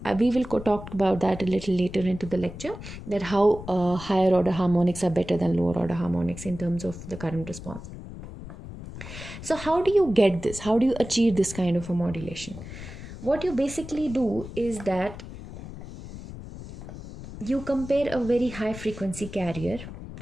We will talk about that a little later into the lecture, that how higher order harmonics are better than lower order harmonics in terms of the current response. So how do you get this? How do you achieve this kind of a modulation? What you basically do is that you compare a very high frequency carrier.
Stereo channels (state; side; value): noise; left; rumble, 12 dB below the sound